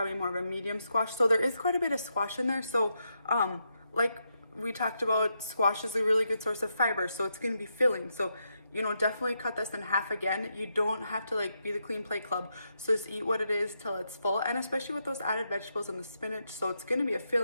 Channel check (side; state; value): both; inverted; correlation -0.82